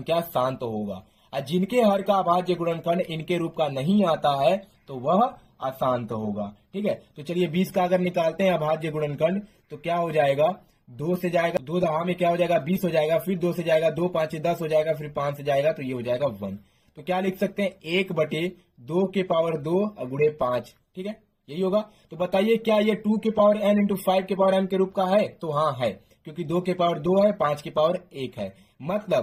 शांत होगा। और जिनके हर का अभाज्य गुणनखंड इनके रूप का नहीं आता है तो वह अशांत होगा। ठीक है, तो चलिए 20 का अगर निकालते हैं अभाज्य गुणनखंड, तो क्या हो जाएगा, 2 से जाएगा, 2 दहा में क्या हो जाएगा 20 हो जाएगा, फिर 2 से जाएगा, 2 5 10 हो जाएगा, फिर 5 से जाएगा तो ये हो जाएगा 1। तो क्या लिख सकते हैं, 1/2 के पावर 2 गुणे 5। ठीक है, यही होगा। तो बताइए क्या ये 2 के पावर n × 5 के पावर m के रूप का है, तो हाँ है, क्योंकि 2 के पावर 2 है, 5 के पावर 1 है,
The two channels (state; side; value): identical; both; correlation 1.00